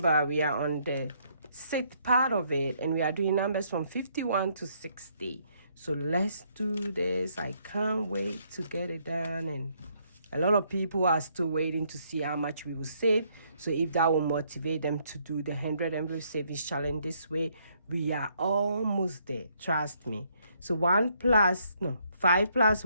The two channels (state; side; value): inverted; both; correlation -0.70